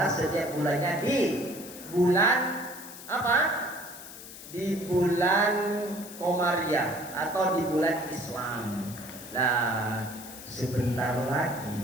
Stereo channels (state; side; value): noise; left; hiss, 14 dB below the sound